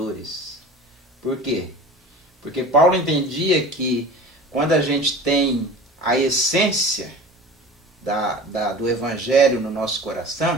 Por quê? Porque Paulo entendia que quando a gente tem a essência do Evangelho no nosso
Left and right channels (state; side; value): normal; both; correlation 0.38